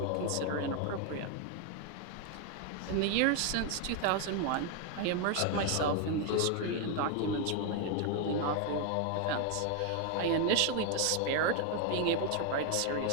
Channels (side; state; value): both; different; correlation 0.01